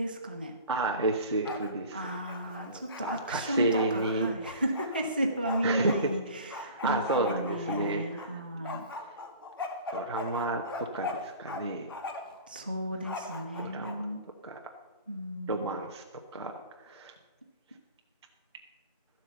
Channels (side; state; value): both; inverted; correlation -0.42